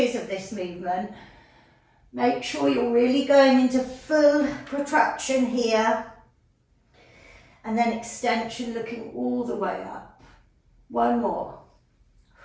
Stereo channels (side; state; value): both; identical; correlation 1.00